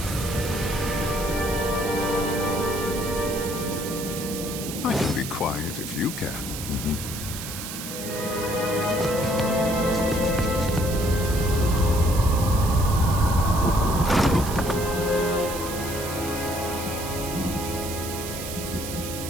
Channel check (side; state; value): right; noise; hiss, 8 dB below the sound